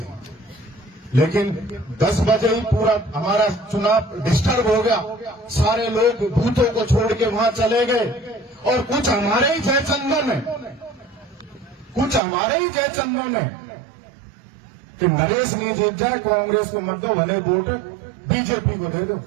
लेकिन 10 बजे ही पूरा हमारा चुनाव डिस्टर्ब हो गया, सारे लोग बूथों को छोड़ के वहां चले गए, और कुछ हमारे ही जयचंदन है, कुछ हमारे ही जयचंदन है कि नरेश नहीं जीत जाए, कांग्रेस को मत दो, भले वोट बीजेपी को दे दो,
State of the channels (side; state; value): left; drops out; at 12.2 s